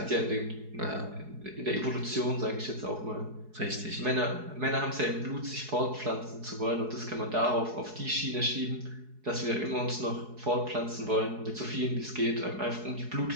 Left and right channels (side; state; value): left; late; 4.7 ms